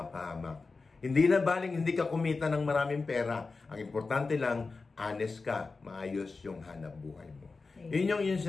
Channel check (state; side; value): quieter; right; 4.1 dB